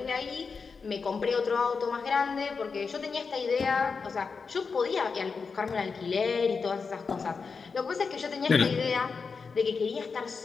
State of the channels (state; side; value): quieter; right; 5.1 dB